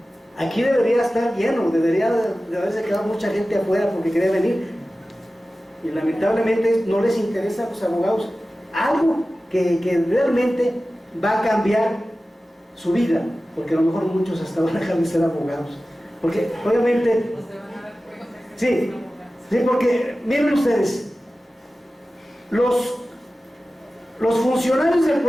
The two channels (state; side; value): normal; both; correlation 0.95